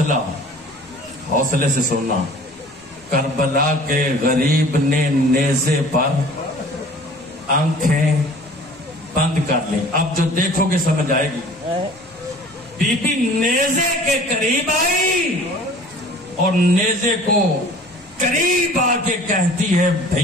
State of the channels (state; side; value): normal; both; correlation 0.47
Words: حوصلے سے سننا. کربلا کے غریب نے نیزے پر آنکھیں بند کر لی. اب جو دیکھو گے سمجھ آئے گی. بی بی نیزے کے قریب آئی اور نیزے کو قریب آ کے کہتی ہے